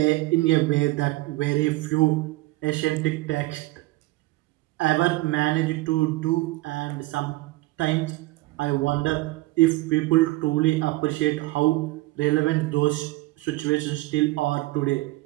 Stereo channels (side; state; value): left; quieter; 20.1 dB